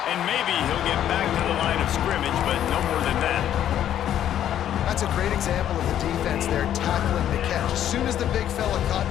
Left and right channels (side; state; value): right; quieter; 10.8 dB